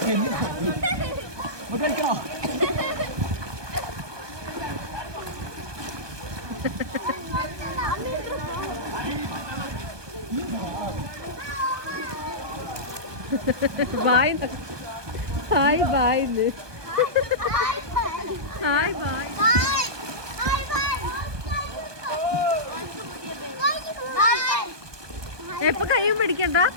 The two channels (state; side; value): late; left; 1.2 ms